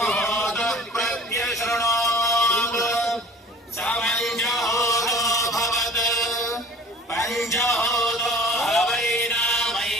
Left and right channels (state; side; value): normal; both; correlation 0.45